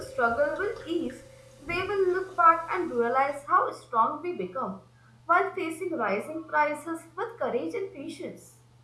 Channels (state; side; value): identical; both; correlation 1.00